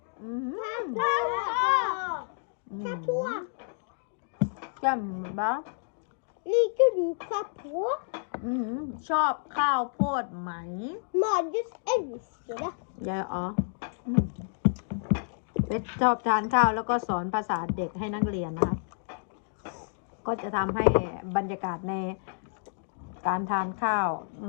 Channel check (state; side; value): silent; right; digital silence